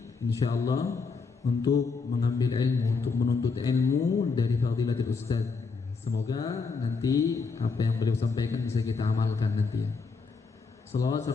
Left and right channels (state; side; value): quieter; right; 4.7 dB